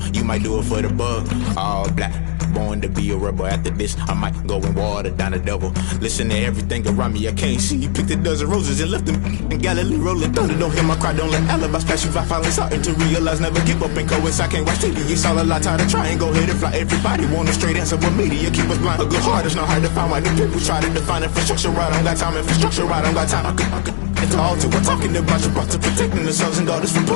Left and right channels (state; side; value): silent; right; digital silence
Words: you might do it for the bug. All black, born to be a rebel. After this, I might go and water down the devil. Listen to everything around me, I can't see. You picked a dozen roses and left them in Galilee rolling thunder. Don't hear my cry, don't let alibis pass you. I finally starting to realize, never give up and coincide. I can't watch TV, it's all a lot. Tired of trying, go ahead and fly. Everybody want a straight answer, but media keep us blind. A good heart is not hard to find. Why the people try to define infrastructure right? I don't got time, infrastructure right? I don't got time. I could into altar. We're talking about you brought to protecting the sons and daughters from